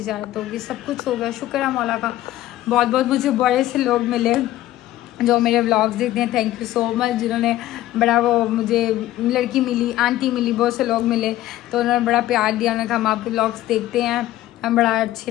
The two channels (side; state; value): right; quieter; 14.7 dB